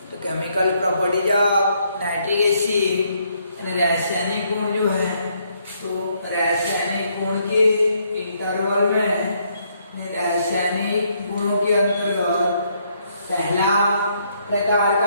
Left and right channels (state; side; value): inverted; both; correlation -0.71